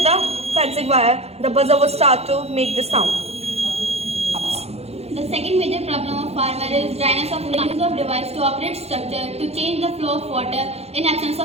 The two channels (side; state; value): left; late; 0.30 ms